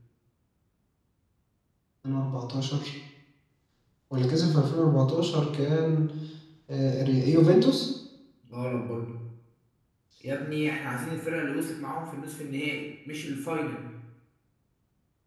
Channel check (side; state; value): both; identical; correlation 1.00